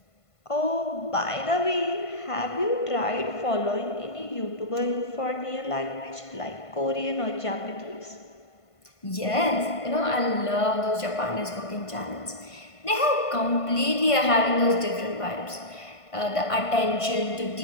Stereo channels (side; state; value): right; late; 1.5 ms